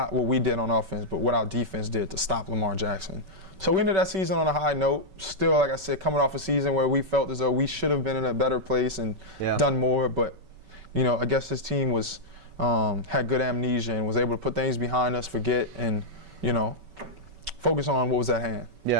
what we did on offense, but what our defense did to stop Lamar Jackson. So we ended that season on a high note. Still, like I said, coming off a season where we felt as though we should have been in a better place and done more. But, I guess this team had good amnesia and was able to put things behind us, forget, and, focus on what was at hand.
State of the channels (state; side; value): late; left; 5.2 ms